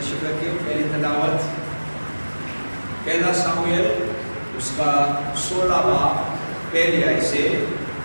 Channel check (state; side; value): inverted; both; correlation -1.00